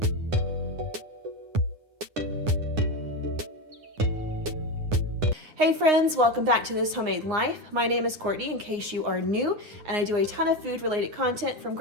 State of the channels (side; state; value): left; late; 9.9 ms